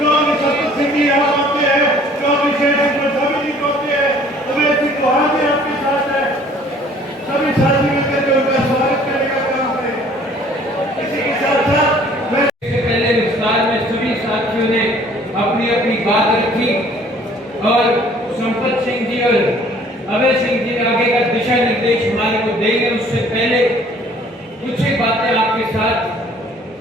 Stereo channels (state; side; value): normal; both; correlation 0.55